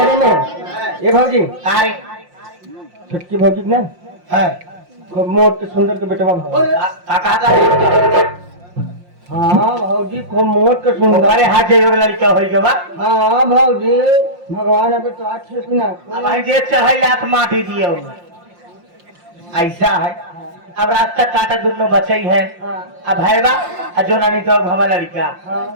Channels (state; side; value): late; left; 5.7 ms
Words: में। ये भौजी कारी छुटकी भौजी ना है खूब मोट के सुंदर के बेटवा कहा है। हाँ भौजी खूब मोट के सुंदर। अरे हाथ जो लड़का हो गया। हाँ भौजी भगवान अभी तो अच्छे से ना अब जे चढ़ाई लात माटी दिए ऐसा है। अब रास्ता काटा दोनों बचे है। अब हैवा जो नानी तो हमारा लड़का